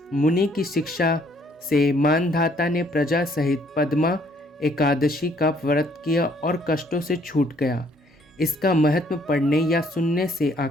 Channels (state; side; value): normal; both; correlation 0.64